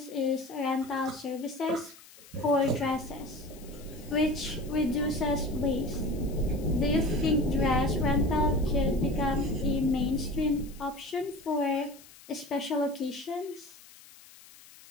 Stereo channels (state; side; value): noise; left; hiss, 22 dB below the sound